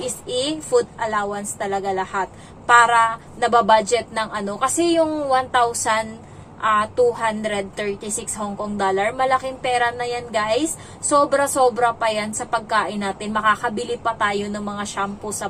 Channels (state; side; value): identical; both; correlation 1.00